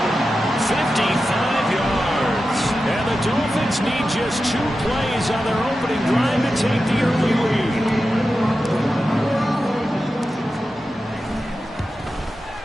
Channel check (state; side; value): normal; both; correlation 0.92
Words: 55 yards. And the Dolphins need just 2 plays on their opening drive to take the early lead.